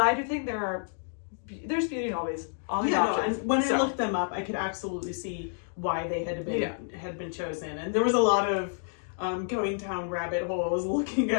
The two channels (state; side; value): silent; right; digital silence